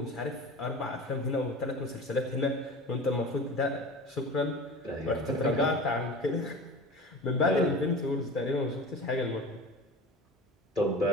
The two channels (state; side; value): normal; both; correlation 0.35